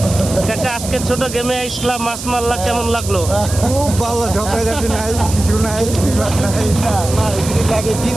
কাকা, আজকে ছোট গেমে আসলাম, মাছ মারলা, কেমন লাগলো? খুব ভালো, ঝগড়াঝাটি নাই, কিছু নাই, বিবাদ নাই, লাগে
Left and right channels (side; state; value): right; noise; hiss, 9 dB below the sound